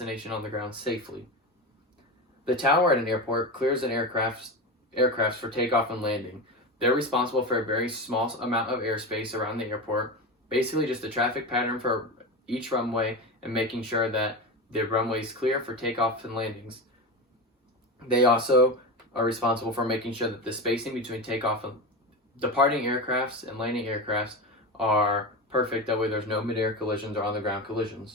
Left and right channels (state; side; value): normal; both; correlation 0.22